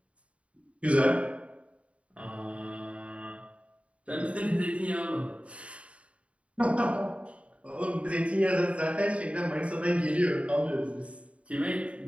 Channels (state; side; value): late; left; 0.063 ms